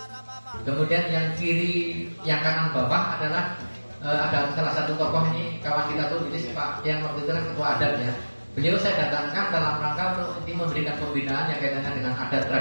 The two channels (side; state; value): both; inverted; correlation -1.00